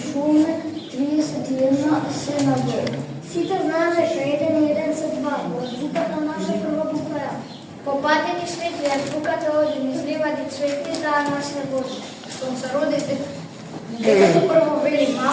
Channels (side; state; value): both; identical; correlation 1.00